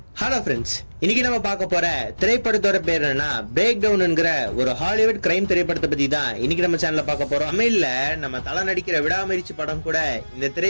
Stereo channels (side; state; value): both; inverted; correlation -1.00